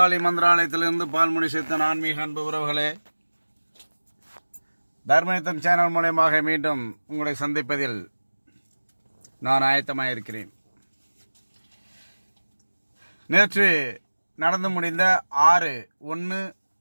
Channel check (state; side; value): inverted; both; correlation -1.00